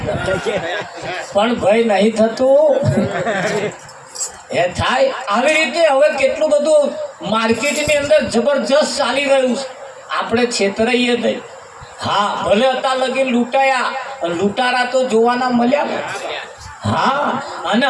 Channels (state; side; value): identical; both; correlation 1.00